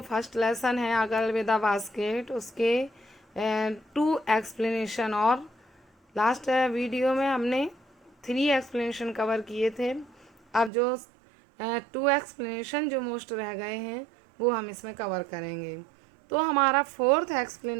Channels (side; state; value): left; drops out; at 10.7 s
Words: फर्स्ट लेसन है अगर विद द बास्केट, उसके 2 एक्सप्लेनेशन। और लास्ट वीडियो में हमने 3 एक्सप्लेनेशन कवर किए थे। अब जो 2 एक्सप्लेनेशन जो मोस्ट रह गए हैं वो हम इसमें कवर करेंगे। तो हमारा 4th